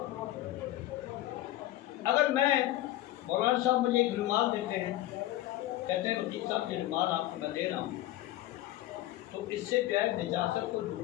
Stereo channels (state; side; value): quieter; right; 15.2 dB